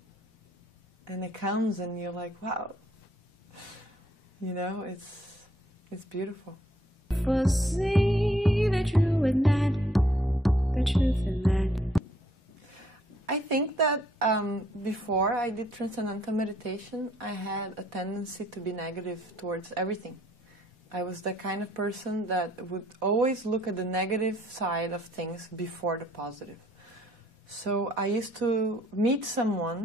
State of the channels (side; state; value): both; normal; correlation 0.65